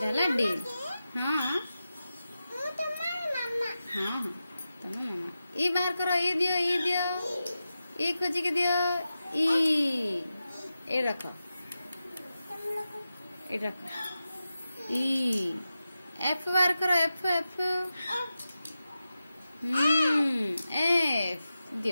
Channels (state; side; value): inverted; both; correlation -0.92